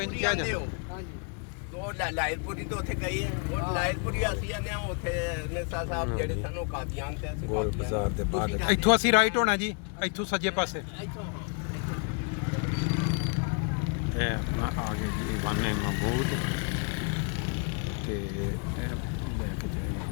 ਇੰਝ ਕਿਹਾ ਜਾਂਦਾ। ਉਹ ਲਾਇਲਪੁਰੀ ਤੋਂ ਉੱਥੇ ਗਈ ਹੈ, ਉਹ ਲਾਇਲਪੁਰੀ ਅਸੀਂ ਆਨੇ ਆ ਉੱਥੇ ਨੇਸਾ ਸਾਹਿਬ ਜਿਹੜੇ ਸਾਨੂੰ ਕਾਦੀਆਨ ਤੇ ਅਸੀਂ ਗੋਲ ਬਾਜ਼ਾਰ ਦੇ ਬਾਅਦ ਇੱਥੋਂ ਅਸੀਂ ਰਾਈਟ ਹੋਣਾ ਜੀ, ਇੱਥੋਂ ਸੱਜੇ ਪਾਸੇ। ਇਹ ਆਪਣਾ ਆ ਗਏ ਜੀ ਵਾਨੇ ਮਬੂਦ ਤੇ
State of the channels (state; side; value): quieter; right; 38.0 dB